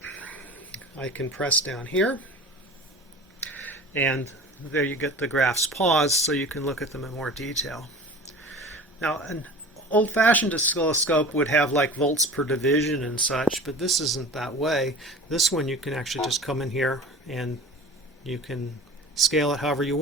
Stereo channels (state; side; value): normal; both; correlation 0.39